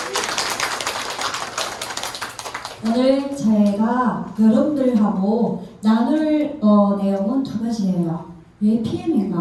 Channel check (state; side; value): identical; both; correlation 1.00